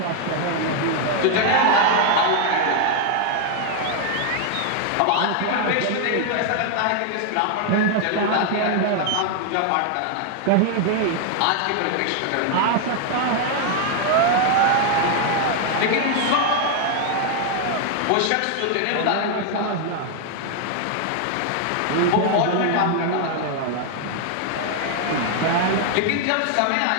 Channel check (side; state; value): both; different; correlation 0.00